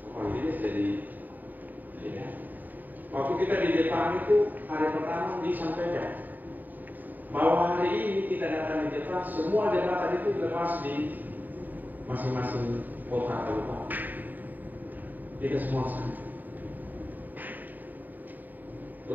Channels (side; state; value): left; late; 0.086 ms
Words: oh ini jadi ya. Waktu kita di Jepang itu hari pertama disampaikan bahwa hari ini kita datang di Jepang, semua jembatan itu lepas di masing-masing kota kabupaten. Kita semua sama.